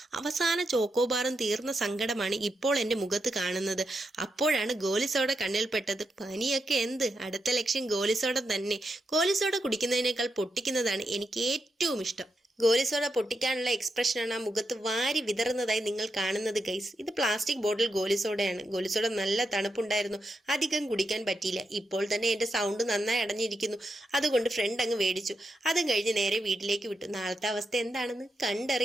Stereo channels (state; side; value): normal; both; correlation 0.85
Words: അവസാന ചോക്കോബാറും തീർന്ന സങ്കടമാണ് ഇപ്പോൾ എൻ്റെ മുഖത്ത് കാണുന്നത്. അപ്പോഴാണ് ഗോലിസോഡ കണ്ണിൽപ്പെട്ടത്. പനിയൊക്കെ എന്ത്, അടുത്ത ലക്ഷ്യം ഗോലിസോഡ തന്നെ. ഗോലിസോഡ കുടിക്കുന്നതിനേക്കാൾ പൊട്ടിക്കുന്നതാണ് എനിക്ക് ഏറ്റവും ഇഷ്ടം. ഗോലിസോഡ പൊട്ടിക്കാനുള്ള എക്സ്പ്രഷനാണ് ആ മുഖത്ത് വാരി വിതറുന്നതായി നിങ്ങൾ കാണുന്നത് ഗൈസ്. ഇത് പ്ലാസ്റ്റിക് ബോട്ടിൽ ഗോലിസോഡയാണ്. ഗോലിസോഡ നല്ല തണുപ്പുണ്ടായിരുന്നു, അധികം കുടിക്കാൻ പറ്റിയില്ല. ഇപ്പോൾ തന്നെ എൻ്റെ സൗണ്ട് നന്നായി അടഞ്ഞിരിക്കുന്നു. അതുകൊണ്ട് ഫ്രണ്ട് അങ്ങ് മേടിച്ചു. അതും കഴിഞ്ഞ് നേരെ വീട്ടിലേക്ക് വിട്ടു. നാളത്തെ അവസ്ഥ എന്താണെന്ന്